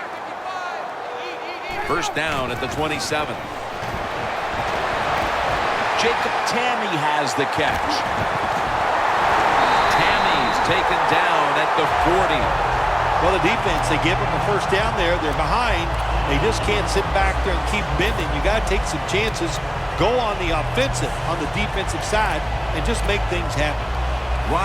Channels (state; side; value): identical; both; correlation 1.00